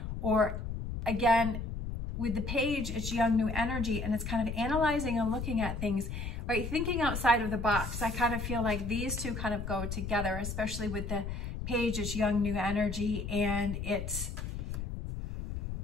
or again, with the page, it's young, new energy, and it's kind of analyzing and looking at things, right? Thinking outside of the box. I kind of feel like these two kind of go together, especially with the page, it's young, new energy, and it's,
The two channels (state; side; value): noise; left; rumble, 5 dB below the sound